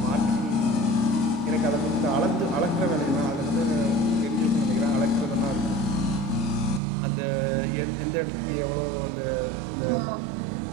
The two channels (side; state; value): left; drops out; at 6.8 s